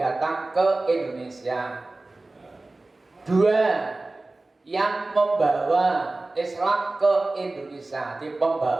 ke Indonesia. 2 yang membawa Islam ke Indonesia, di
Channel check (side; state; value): left; quieter; 3.1 dB